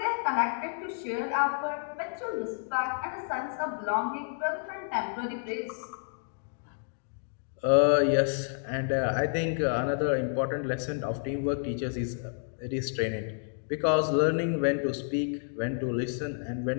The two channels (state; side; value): silent; right; digital silence